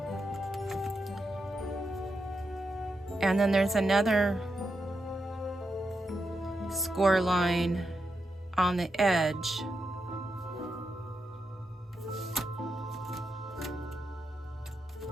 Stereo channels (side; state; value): both; normal; correlation 0.86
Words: and then there's another score line on the edge.